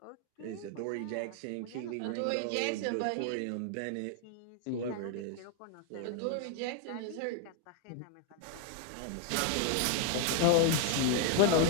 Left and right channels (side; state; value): both; different; correlation 0.00